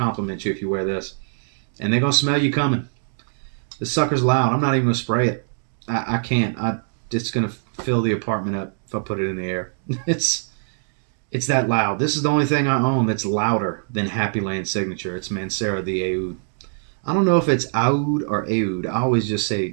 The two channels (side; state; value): left; silent; digital silence